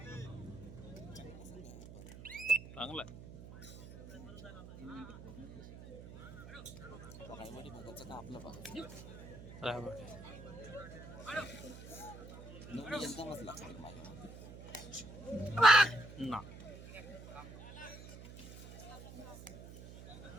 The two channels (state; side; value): noise; right; hum, 14 dB below the sound